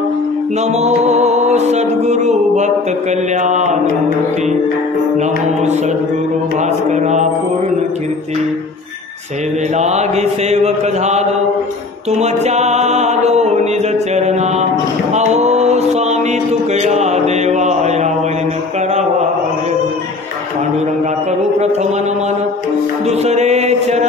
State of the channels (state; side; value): quieter; right; 3.7 dB